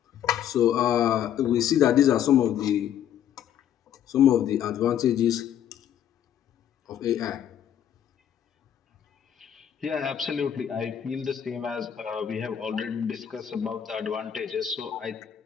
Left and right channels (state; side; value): quieter; right; 9.8 dB